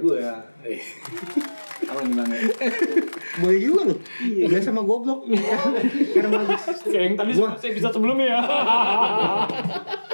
ya. Apa nih Bang? Boleh juga loh. Dia sama goblok. Karena bagus. Kayak yang tadi saya bisa sebelumnya ya.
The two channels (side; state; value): both; inverted; correlation -1.00